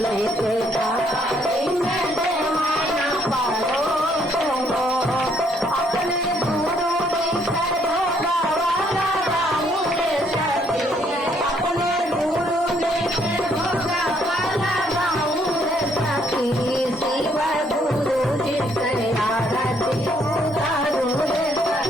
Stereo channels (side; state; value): both; normal; correlation 0.68